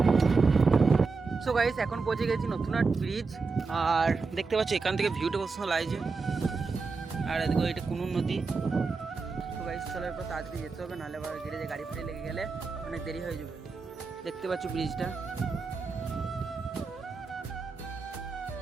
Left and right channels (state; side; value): quieter; left; 4.4 dB